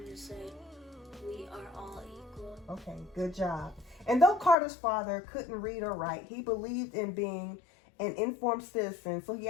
to say, "We are all equal." Okay, good job. And though Carter's father couldn't read or write, he believed in being an informed citizen, so he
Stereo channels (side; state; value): right; drops out; at 4.5 s